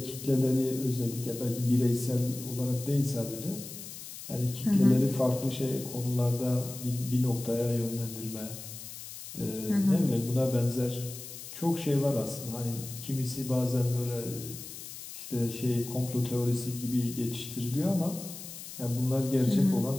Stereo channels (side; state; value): left; noise; hiss, 12 dB below the sound